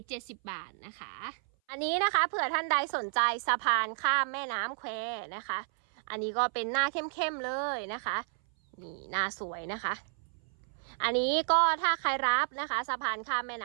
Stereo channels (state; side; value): silent; left; 57 dB below the other